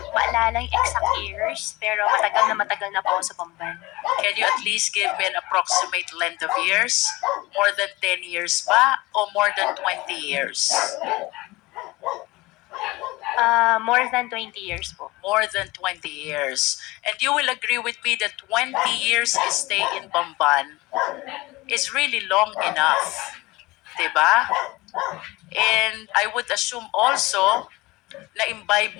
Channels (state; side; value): quieter; right; 21.1 dB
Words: maalala yung exact years, pero matagal na po ako sa Bamban. Can you at least give me an approximate length of years? More than 10 years ba? O more than 20 years? More than 20 years po. more than 20 years. And you will agree with me that 20 years stay in Bamban is really long enough. Diba? And I would assume also na